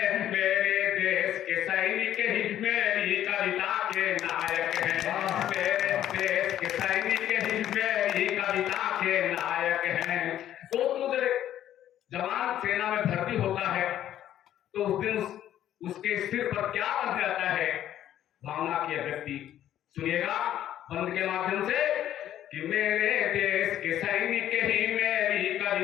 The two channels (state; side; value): quieter; right; 11.6 dB